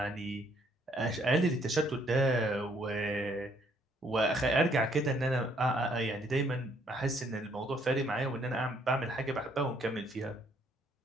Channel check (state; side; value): normal; both; correlation 0.67